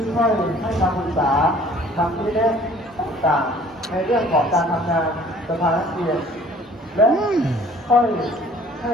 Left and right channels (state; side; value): normal; both; correlation 0.53